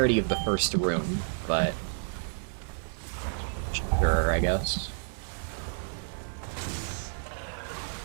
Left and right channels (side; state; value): left; silent; digital silence